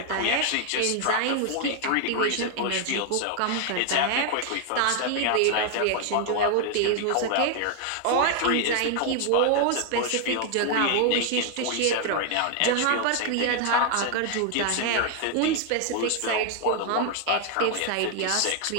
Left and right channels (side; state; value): both; different; correlation 0.00